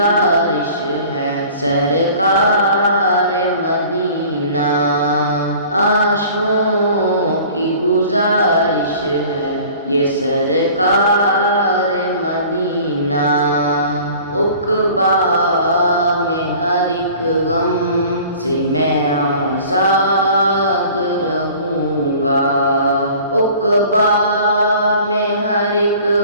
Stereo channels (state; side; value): inverted; both; correlation -0.46